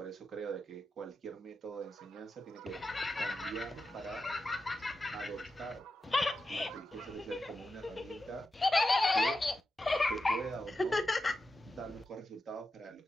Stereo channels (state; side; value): normal; both; correlation 0.89